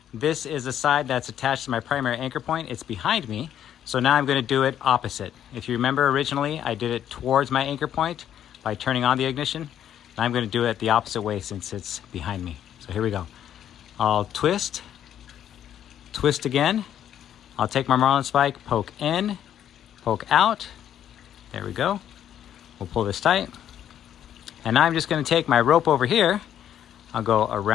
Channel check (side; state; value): right; quieter; 10.3 dB